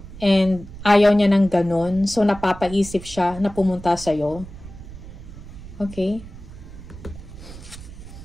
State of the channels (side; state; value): right; noise; rumble, 15 dB below the sound